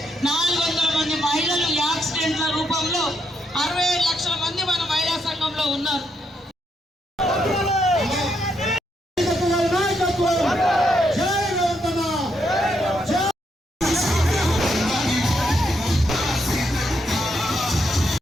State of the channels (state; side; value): normal; both; correlation 0.78